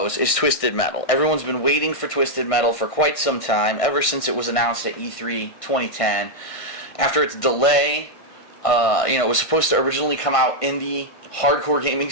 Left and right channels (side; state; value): right; late; 1.6 ms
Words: is Twisted Metal. Everyone's been waiting for Twisted Metal for quite some time, ever since it was announced at E3 2010. After its delay, it was supposed to originally come out in the hardcore gaming